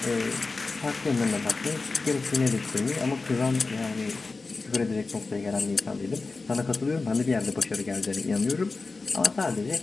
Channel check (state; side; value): quieter; right; 3.9 dB